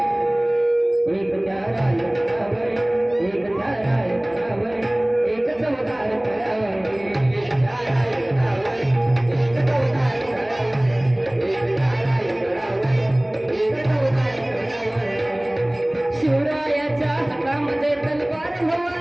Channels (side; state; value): left; noise; rumble, 29 dB below the sound